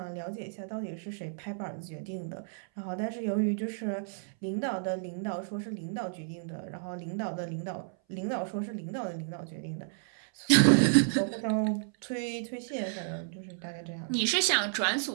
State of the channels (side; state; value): left; silent; 57 dB below the other